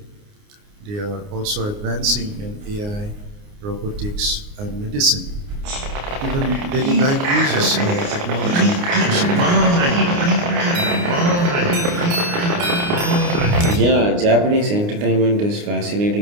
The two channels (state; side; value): late; left; 29 ms